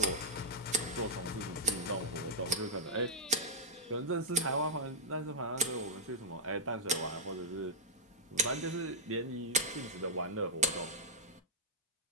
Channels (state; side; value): normal; both; correlation -0.06